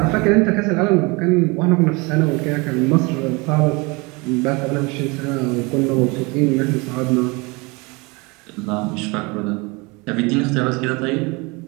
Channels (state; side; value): quieter; left; 26.9 dB